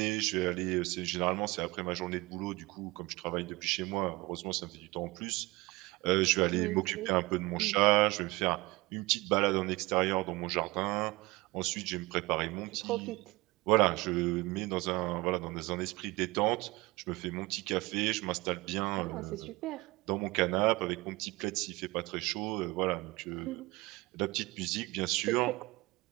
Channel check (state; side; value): quieter; left; 22.2 dB